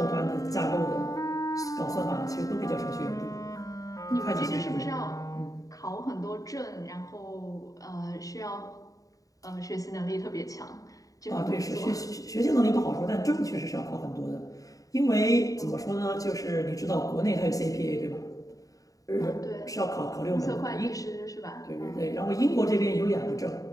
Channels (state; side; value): late; right; 0.17 ms